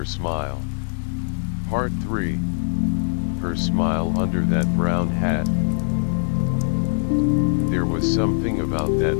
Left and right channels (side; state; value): right; silent; digital silence